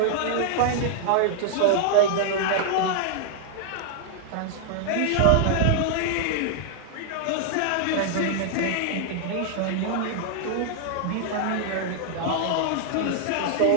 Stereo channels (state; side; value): different; both; correlation 0.00